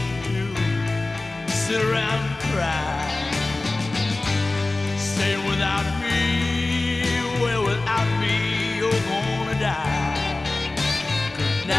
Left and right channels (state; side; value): quieter; right; 3.1 dB